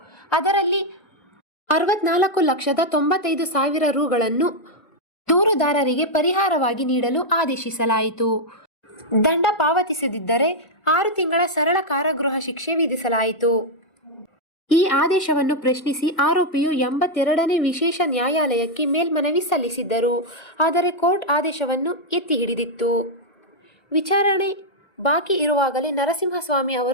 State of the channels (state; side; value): late; right; 1.4 ms